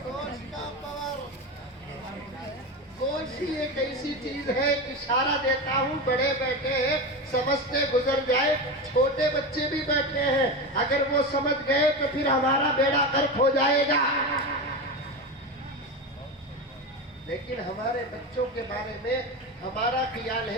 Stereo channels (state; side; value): normal; both; correlation 0.20